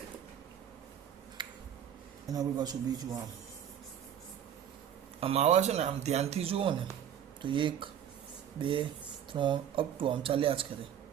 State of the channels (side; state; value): left; quieter; 9.5 dB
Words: એના પર પાછું બીજું આમ આવા છે ને, આમ ધ્યાનથી જુઓ ને તો 1 2 3 અપ ટુ આમ ચાલ્યા જ કરે.